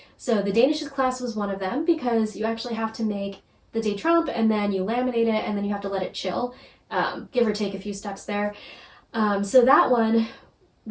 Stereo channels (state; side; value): identical; both; correlation 1.00